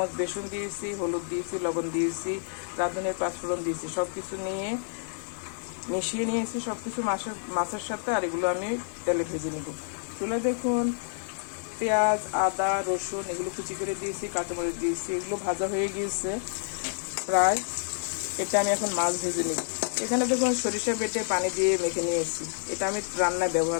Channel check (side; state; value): right; silent; digital silence